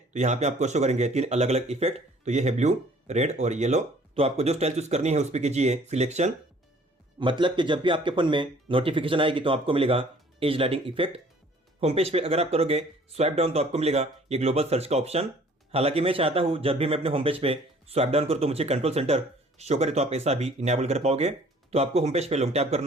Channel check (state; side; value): normal; both; correlation 0.55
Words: यहाँ पे आपको शो करेंगे 3 अलग अलग इफेक्ट। तो ये है ब्लू, रेड और येलो। तो आपको जो स्टाइल चूज करनी है उस पर कीजिए सिलेक्शन, मतलब कि जब भी आपके फोन में नोटिफिकेशन आएगी तो आपको मिलेगा as lighting effect. Home page पे अगर आप करोगे स्वाइप डाउन तो आपको मिलेगा ये ग्लोबल सर्च का ऑप्शन। हालांकि मैं चाहता हूं जब भी मैं अपने होम पेज पे स्वाइप डाउन करूं तो मुझे कंट्रोल सेंटर शो करे, तो आप ऐसा भी इनेबल कर पाओगे। तो आपको होम पेज पे लॉन्ग टैप